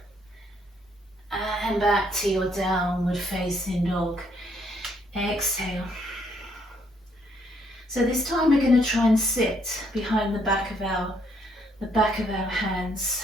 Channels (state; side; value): normal; both; correlation 0.69